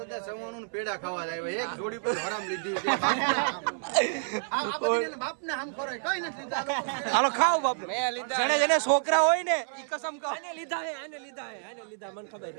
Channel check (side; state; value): left; silent; 58 dB below the other